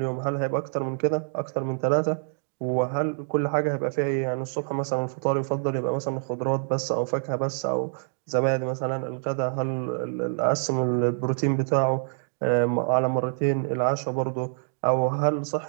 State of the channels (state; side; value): silent; left; digital silence